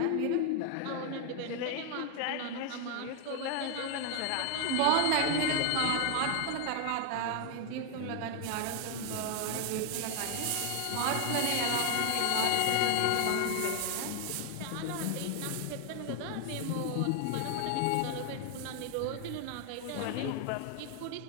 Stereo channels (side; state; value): both; different; correlation 0.00